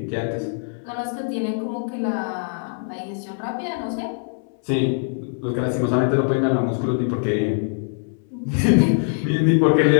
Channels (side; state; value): right; silent; digital silence